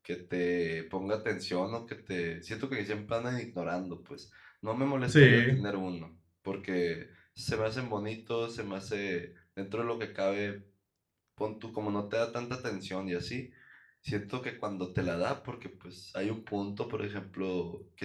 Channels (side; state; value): both; identical; correlation 1.00